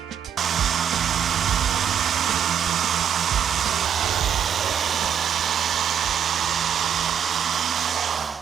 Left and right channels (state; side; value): quieter; left; 8.5 dB